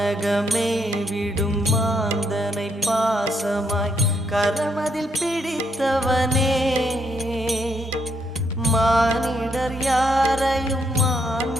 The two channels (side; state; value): both; normal; correlation 0.75